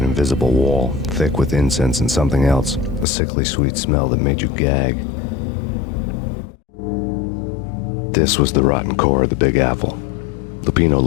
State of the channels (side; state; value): right; drops out; at 3.1 s